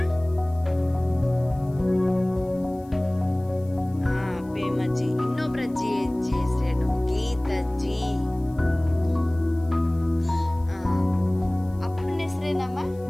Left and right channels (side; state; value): left; noise; hiss, 30 dB below the sound